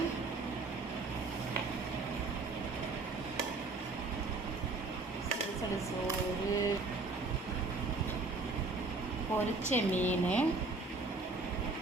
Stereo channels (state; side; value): quieter; left; 3.5 dB